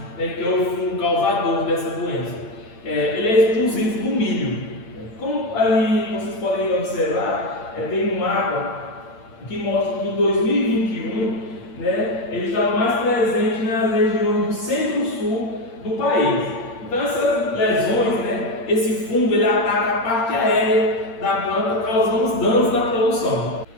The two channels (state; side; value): late; right; 8.7 ms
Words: que é o fungo causador dessa doença. Ele é exclusivo do milho. Como ali vocês podem observar, tem um mapa que mostra que em 2021 ele está mais presente nas regiões do centro-sul do país. Então essas lesões, esse fungo ele ataca a parte aérea da planta, causando os danos na produção.